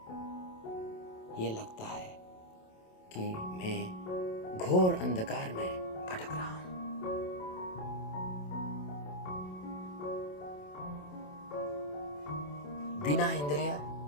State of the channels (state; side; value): late; right; 27 ms